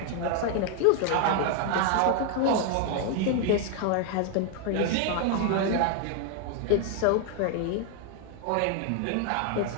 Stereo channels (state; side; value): different; both; correlation 0.00